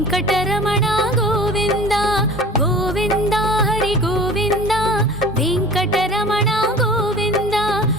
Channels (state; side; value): normal; both; correlation 0.41